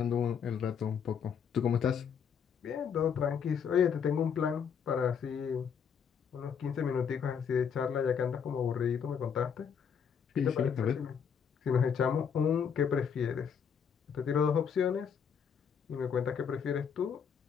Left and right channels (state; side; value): quieter; right; 7.1 dB